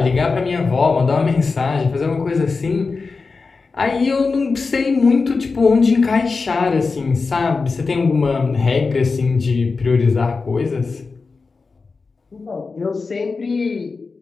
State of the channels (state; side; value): quieter; right; 4.4 dB